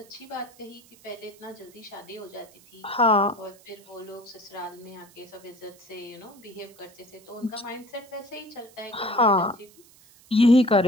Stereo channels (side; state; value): right; noise; hiss, 25 dB below the sound